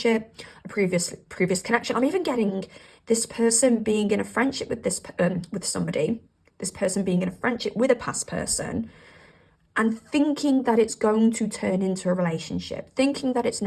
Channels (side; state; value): both; identical; correlation 1.00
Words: a previous connection. I'm even getting this person being in a friendship with with somebody, this person being in a friendship with a past person, and thinking that it's going to turn into a relationship, thinking that it's